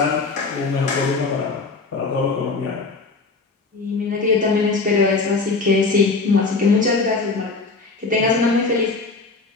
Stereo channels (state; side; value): quieter; right; 4.0 dB